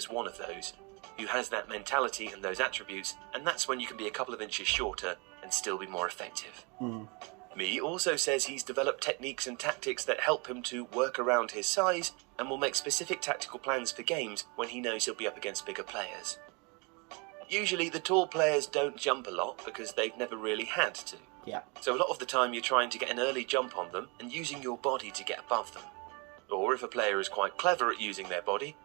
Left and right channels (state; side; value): quieter; left; 30.6 dB